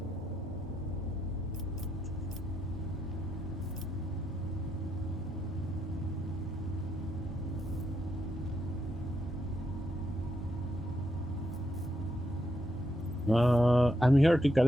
I'm here to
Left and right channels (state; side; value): normal; both; correlation 0.80